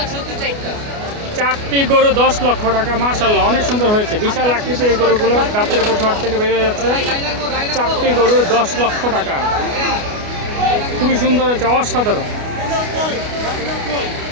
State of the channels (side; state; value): left; late; 29 ms